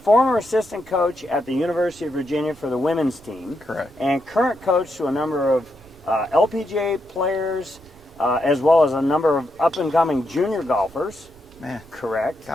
assistant coach at the University of Virginia for the women's team. Correct. And current coach to a number of LPGA players, as well as a number of up-and-coming junior golfers. Man. Correct.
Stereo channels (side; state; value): right; noise; rumble, 25 dB below the sound